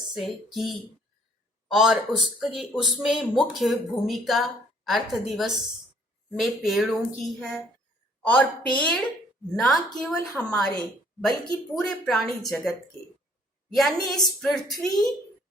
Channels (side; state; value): both; normal; correlation 0.61